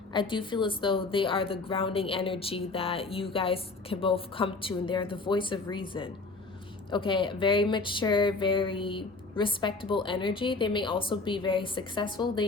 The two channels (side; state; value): right; quieter; 3.7 dB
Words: I do feel as though they are the grounding energy that you guys can both come to, and they're the voice of reason. Okay, very mature, very respectable energy. They may also be very successful.